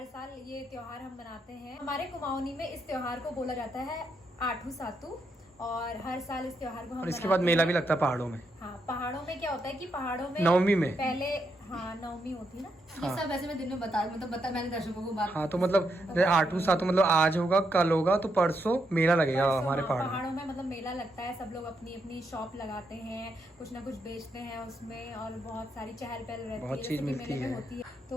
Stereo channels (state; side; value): normal; both; correlation 0.80